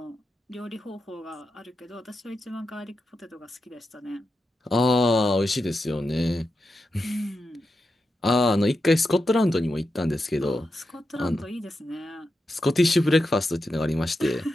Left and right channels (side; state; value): both; normal; correlation 0.88